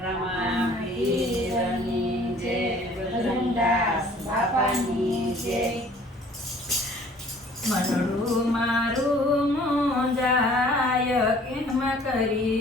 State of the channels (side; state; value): both; normal; correlation 0.53